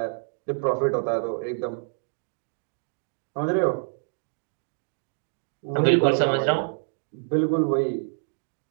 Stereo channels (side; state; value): left; silent; digital silence